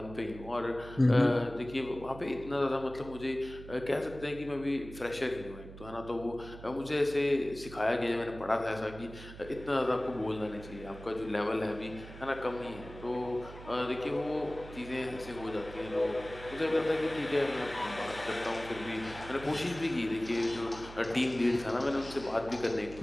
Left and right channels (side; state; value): right; noise; hum, 14 dB below the sound